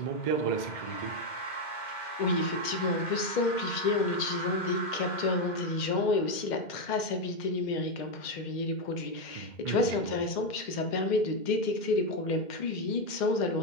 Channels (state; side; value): late; right; 2.1 ms